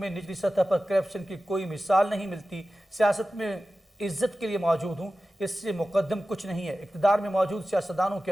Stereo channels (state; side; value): normal; both; correlation 0.95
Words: نچلی سطح پر کرپشن کی کوئی مثال نہیں ملتی. سیاست میں عزت کے لیے موجود ہوں اس سے مقدم کچھ نہیں ہے. اقتدار میں موجود سیاستدانوں کی